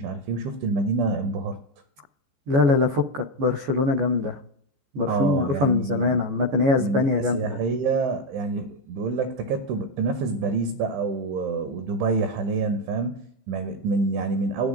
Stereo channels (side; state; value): left; late; 14 ms